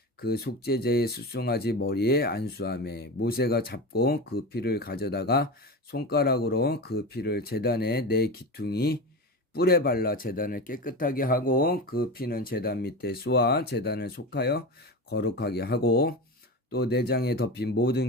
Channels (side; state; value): both; normal; correlation 0.25